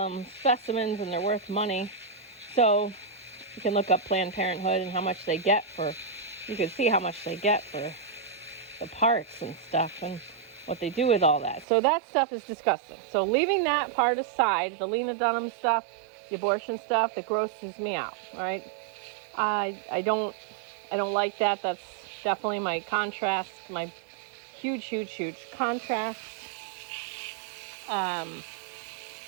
them specimens and they're worth money. So you can look up Planned Parenthood and how much they get you can see how much they get for the parts and stuff and what they do with all that. So that stuff is disgusting. So leaving that part aside, the Lena Dunham stuff, the abortion stuff, that grosses me out, all right? I don't like that. That's definitely my contrast, my huge contrast.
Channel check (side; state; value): left; drops out; at 11.7 s